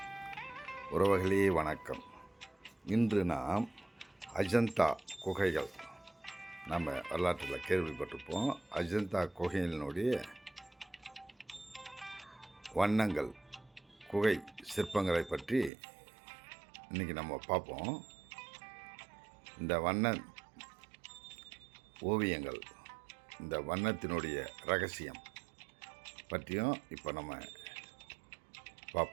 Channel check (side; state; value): left; drops out; at 15.7 s